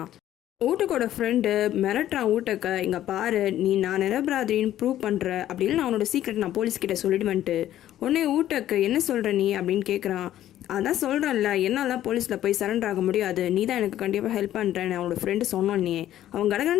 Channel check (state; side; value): quieter; right; 12.6 dB